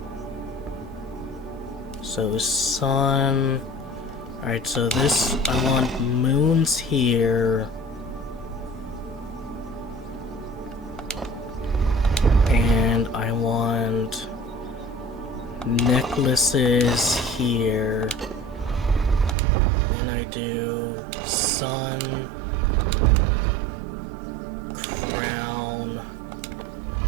So sun. Alright, so this, I want moons here. And I want necklaces here. Then I do sun, crown,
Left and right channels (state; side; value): drops out; left; at 19.4 s